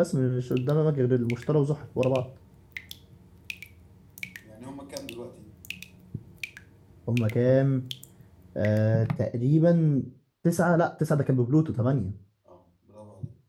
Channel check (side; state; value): both; identical; correlation 1.00